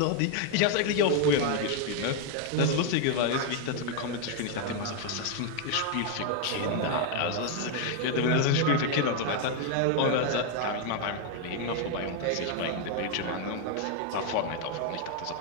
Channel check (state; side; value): different; both; correlation 0.01